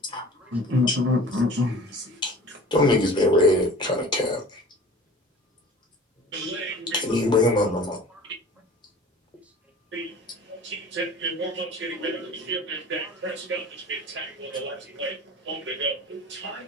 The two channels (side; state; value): both; normal; correlation 0.42